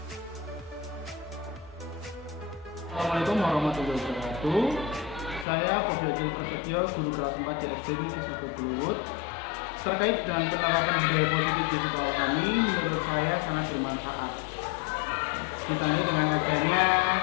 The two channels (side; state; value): right; drops out; at 5.5 s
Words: Assalamualaikum warahmatullahi wabarakatuh. Saya Bobi Agil Prasetyo, guru kelas 4 SD Negeri 1 Kluwut. Terkait dengan penerapan budaya positif di sekolah kami, menurut saya sangat bermanfaat. Ditandai dengan adanya